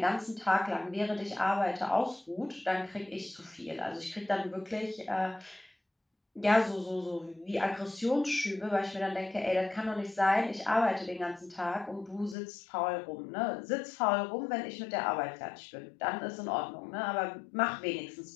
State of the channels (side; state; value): right; drops out; at 12.4 s